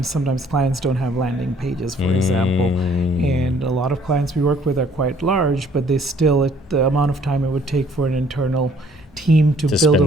sometimes clients don't have landing pages, for example. And a lot of clients we work with are quite large, but they still, at the amount of time it would take for an internal team to build a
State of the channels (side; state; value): both; normal; correlation 0.60